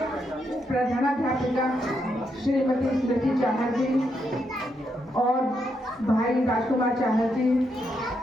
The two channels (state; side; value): normal; both; correlation 0.80